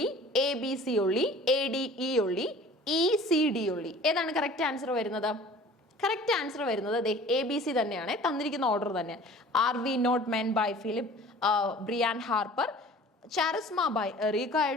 ABC only, ADE only, ECD only. ഏതാണ് കറക്റ്റ് ആൻസർ വരുന്നത്? കറക്റ്റ് ആൻസർ വരുന്നത് ABC തന്നെയാണ്, തന്നിരിക്കുന്ന ഓർഡർ തന്നെ. Are We Not Men by Philip Brian Harper, Charisma by Erica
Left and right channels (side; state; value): both; normal; correlation 0.46